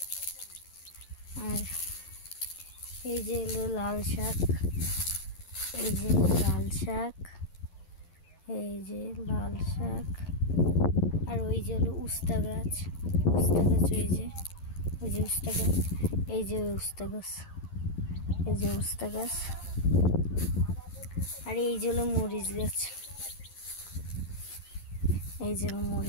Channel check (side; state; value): right; late; 11 ms